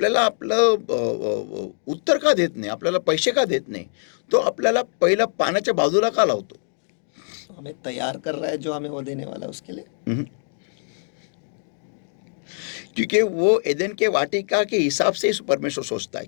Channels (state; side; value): silent; right; digital silence